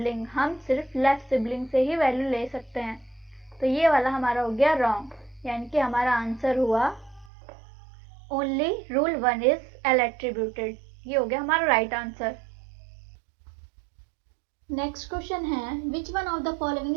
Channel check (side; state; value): left; drops out; at 7.3 s